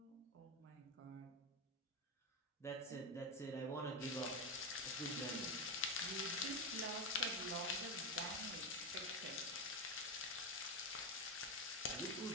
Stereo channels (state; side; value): normal; both; correlation 0.12